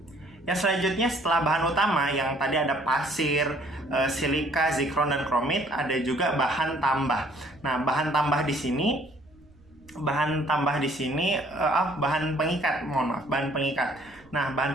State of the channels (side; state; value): right; noise; rumble, 27 dB below the sound